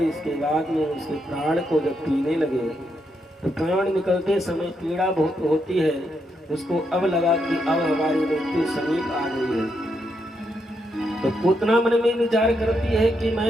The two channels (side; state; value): both; normal; correlation 0.80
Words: इसके बाद में उसके प्राण को जब पीने लगे तो प्राण निकलते समय पीड़ा बहुत होती है। उसको अब लगा कि अब हमारी मृत्यु समीप आ गई है। तो पूतना मन में विचार करती है कि